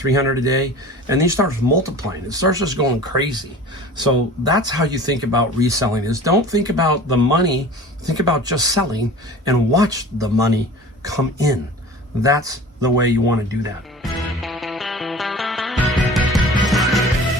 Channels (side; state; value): both; normal; correlation 0.40